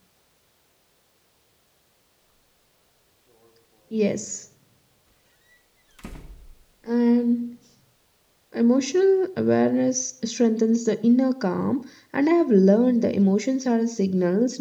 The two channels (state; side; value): identical; both; correlation 1.00